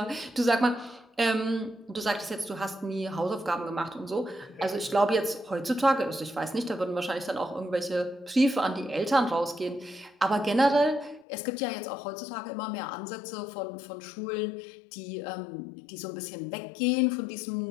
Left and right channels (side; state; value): right; drops out; at 11.2 s